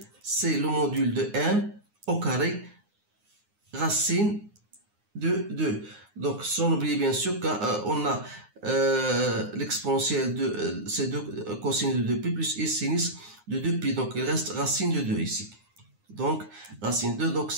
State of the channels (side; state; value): left; late; 9.6 ms